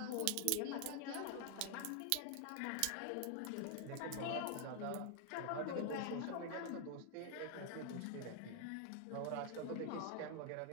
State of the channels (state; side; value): different; both; correlation 0.00